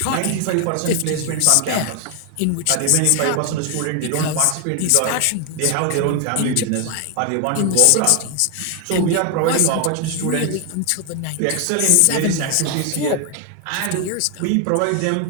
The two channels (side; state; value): both; different; correlation 0.01